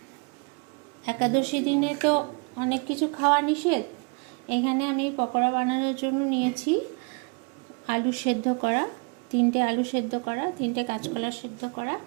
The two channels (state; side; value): quieter; left; 33.0 dB